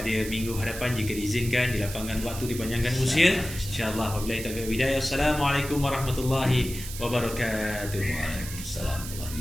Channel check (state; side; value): noise; right; hiss, 10 dB below the sound